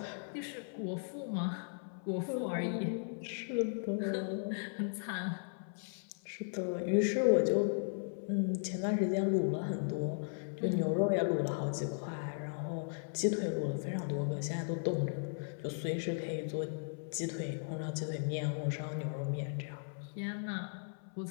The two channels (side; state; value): right; silent; 53 dB below the other